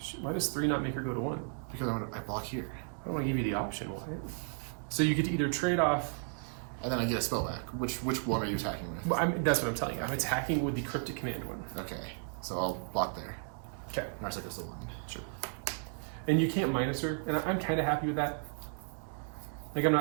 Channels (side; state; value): left; silent; 55 dB below the other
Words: Why does 3 not make her go to 1? Because I block here. I don't want to give you the option. Why? So you get to either trade off. And then I get a spell back. Which one are you attacking with? Well, that's what I'm telling you. I'm attacking with the Cryptic Command one. Okay. So I'll block there. Okay. Narset goes to 1. Sure. And you can't minus her, and I'm kind of happy with that. Like I'm